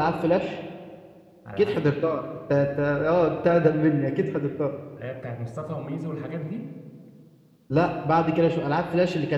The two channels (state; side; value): identical; both; correlation 1.00